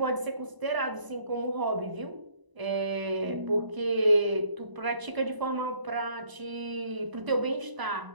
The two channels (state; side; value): late; left; 1.0 ms